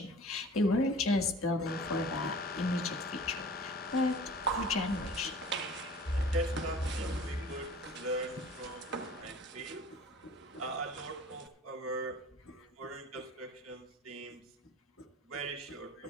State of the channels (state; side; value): normal; both; correlation 0.44